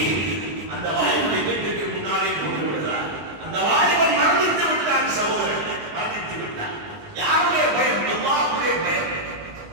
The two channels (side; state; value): left; late; 19 ms